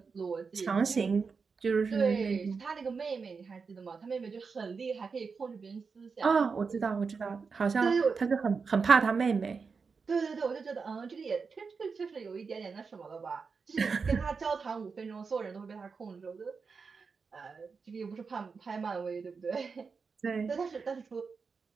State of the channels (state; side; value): quieter; left; 5.1 dB